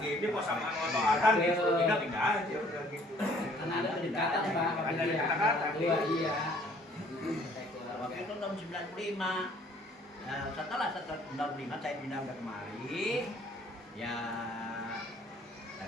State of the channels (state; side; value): normal; both; correlation 0.58